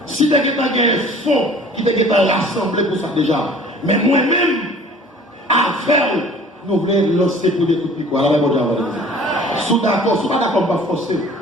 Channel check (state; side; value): normal; both; correlation 0.48